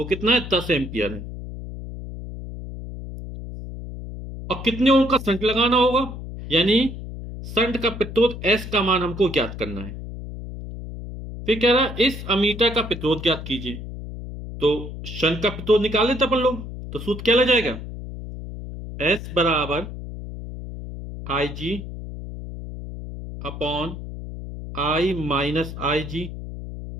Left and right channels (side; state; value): left; noise; hum, 10 dB below the sound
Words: कितना है? 10 एम्पियर है। और कितने ओम का संट लगाना होगा? यानी संट का प्रतिरोध एस का मान हमको ज्ञात करना है। फिर कह रहा है इस अमीटर का प्रतिरोध ज्ञात कीजिए। तो शंट का प्रतिरोध निकाल लेते अपन लोग। तो सूत्र क्या लग जाएगा? एस बराबर I G upon I minus I G